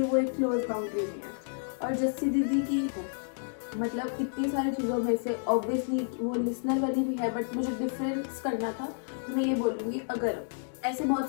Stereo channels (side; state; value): right; silent; digital silence